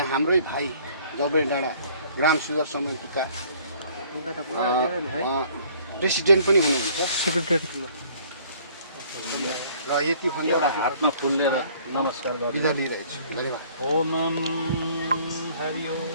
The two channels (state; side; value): inverted; both; correlation -0.56